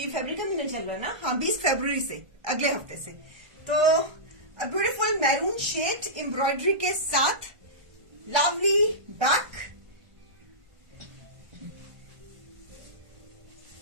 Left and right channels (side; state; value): left; late; 1.5 ms